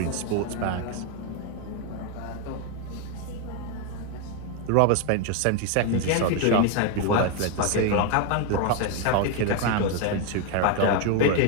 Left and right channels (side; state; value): both; different; correlation 0.01